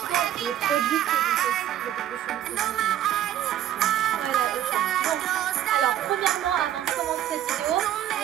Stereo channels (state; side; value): quieter; left; 11.7 dB